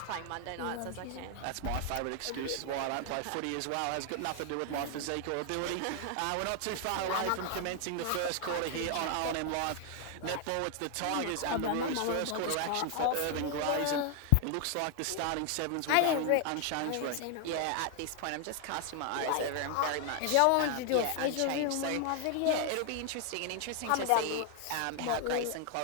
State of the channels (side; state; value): both; different; correlation 0.00